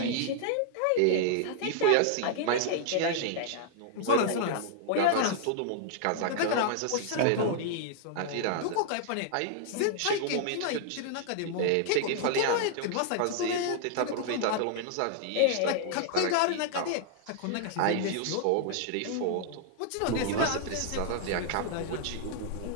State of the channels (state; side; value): different; both; correlation -0.01